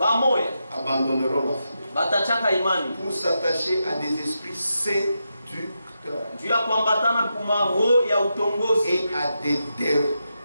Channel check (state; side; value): inverted; both; correlation -0.86